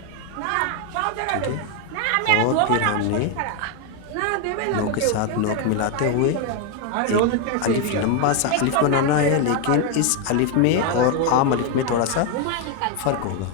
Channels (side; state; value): both; different; correlation 0.01